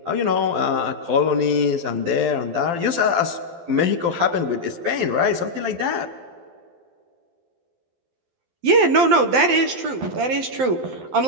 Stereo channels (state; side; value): late; left; 12 ms